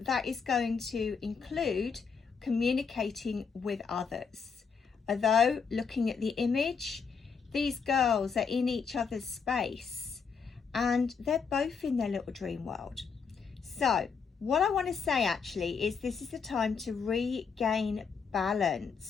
is going to include communicating with others. Although, looking at the image, these girls are in each other's space and they're both in their little dream world. So what I want to say actually is this is the time to regain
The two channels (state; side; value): quieter; right; 5.8 dB